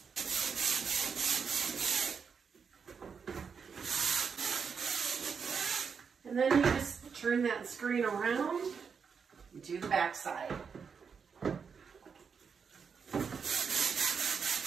And then you just turn that screen around and do the back side.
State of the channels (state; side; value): quieter; left; 6.1 dB